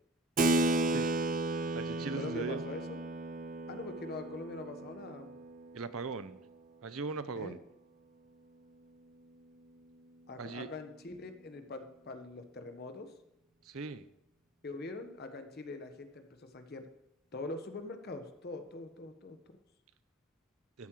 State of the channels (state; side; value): normal; both; correlation 0.39